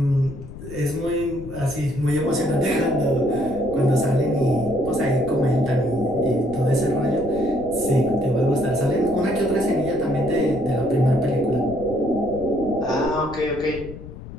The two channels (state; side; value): noise; left; rumble, 13 dB below the sound